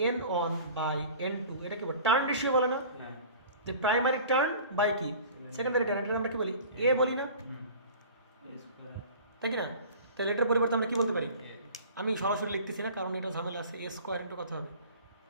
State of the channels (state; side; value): inverted; both; correlation -0.43